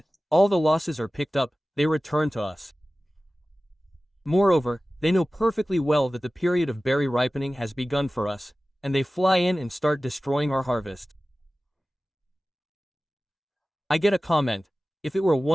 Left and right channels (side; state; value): both; normal; correlation 0.96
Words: all the losses are picked up, they return to us. Moreover, they know perfectly well that the period of berry ripening has begun for us, and they fly in and start destroying our harvest. I get a comment. If it were a